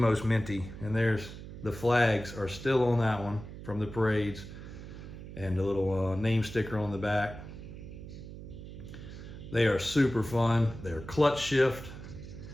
minty. And there's the flags are still on that one from the parades, and the little name sticker on the back. They are super fun. They're clutch shift.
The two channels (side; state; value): right; noise; hum, 12 dB below the sound